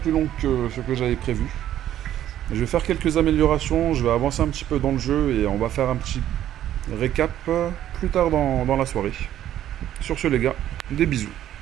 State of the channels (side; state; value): left; quieter; 11.8 dB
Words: longue que ce que j'avais prévu. Je vais faire quelques améliorations, je vais avancer un petit peu dans le jeu et on va faire un petit récap plus tard dans la soirée. Sur ce les gars, des bisous.